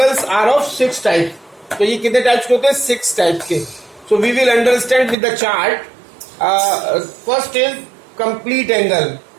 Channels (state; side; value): drops out; left; at 5.2 s